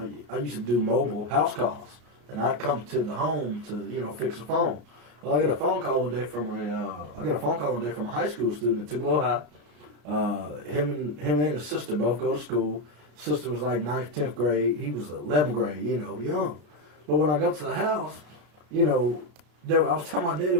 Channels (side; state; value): left; late; 34 ms